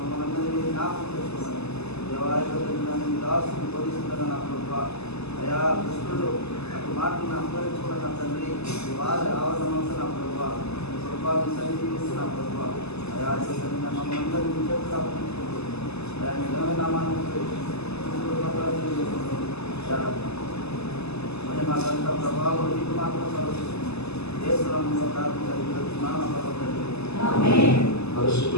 మనందరినీ జ్ఞాపకం చేసుకోవాలి. దేవాలయం దాసుని బోధిస్తున్న నా ప్రభా అయా కృష్ణుడు అటు మాటలను అనుభవించుకున్న నా తండ్రి వారి ఆవరణంతో నా ప్రభా ప్రభావం సన్నిధిస్తూ నా ప్రభా అయా మమ్మల్ని అందరినీ చేతులు అప్పగించుకుంటూ అయా నిజమైన నామాన్ని మరి మాకంతా ప్రభావం నీకు మాత్రం సర్వస్తుంది దేశంలో ప్రార్థించాలి.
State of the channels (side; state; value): right; late; 0.79 ms